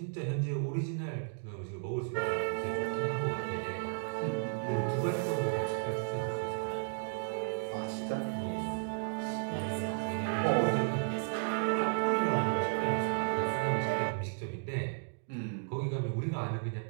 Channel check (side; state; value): left; silent; digital silence